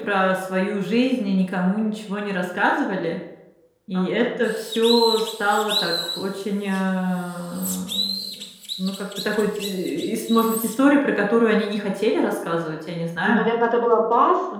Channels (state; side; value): identical; both; correlation 1.00